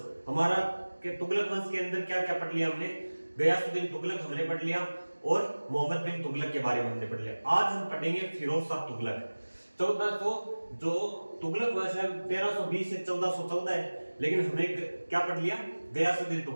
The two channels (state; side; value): inverted; both; correlation -1.00